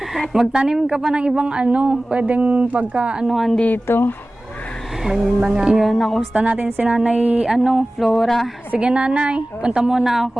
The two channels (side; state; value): both; normal; correlation 0.97